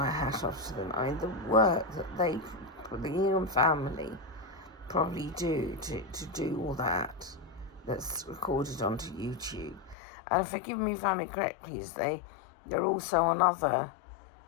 hat off to them. I mean, the work that the Ingham family probably do to do all that's recorded onto YouTube. And forgive me if I'm incorrect, please, they're also on other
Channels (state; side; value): drops out; right; at 10.0 s